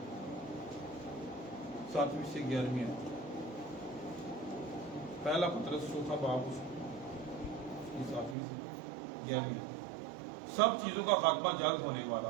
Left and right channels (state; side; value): drops out; left; at 8.3 s